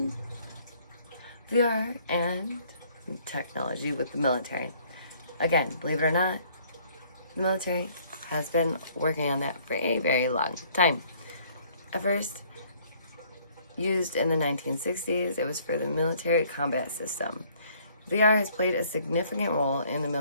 VR and technology with the military. Again, believe it or not, the military has been working on that for a very long time. At first, used in the 1960s, it was for the military combat system. VR has played a significant role in the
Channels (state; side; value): inverted; both; correlation -0.60